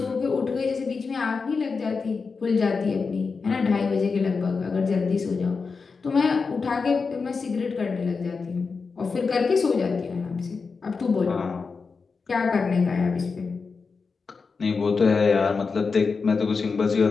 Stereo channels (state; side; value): quieter; right; 4.8 dB